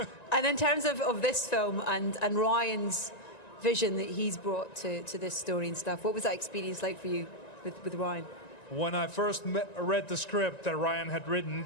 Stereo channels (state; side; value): late; right; 1.9 ms